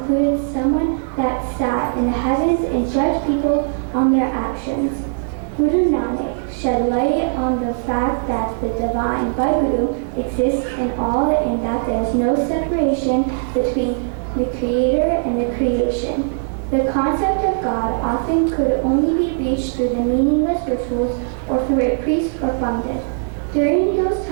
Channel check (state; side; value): silent; left; digital silence